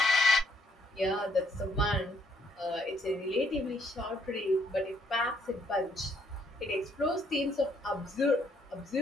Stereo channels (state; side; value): normal; both; correlation 0.69